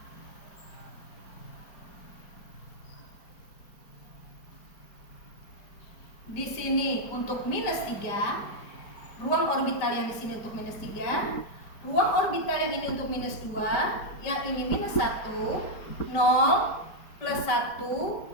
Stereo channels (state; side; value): late; right; 5.1 ms